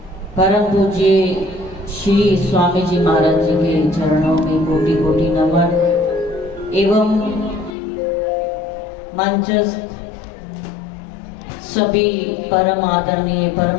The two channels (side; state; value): right; drops out; at 7.8 s